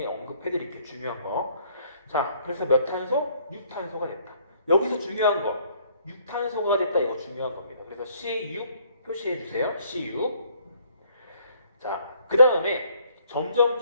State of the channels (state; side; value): inverted; both; correlation -0.63